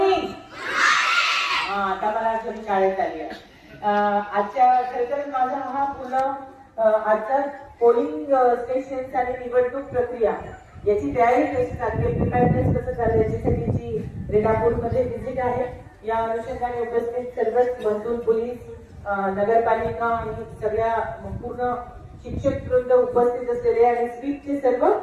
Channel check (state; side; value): identical; both; correlation 1.00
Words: हा, आता मला आठवण शाळेत आली आहे. आजच्या खरं तर माझा हा पूर्ण आजचा पोलिंग स्टेशन आणि निवडणूक प्रक्रिया याची तयारी कशी चालली, प्रिपेअरनेस कसं चाललं याच्यासाठीची रेणापूरमध्ये व्हिजिट आहे. या अनुषंगाने उपस्थित सर्वच महसूल, पोलीस, नगरपालिका आणि सगळ्या पूर्ण शिक्षक वृंद उपस्थित असलेले आणि स्वीपचे सर्व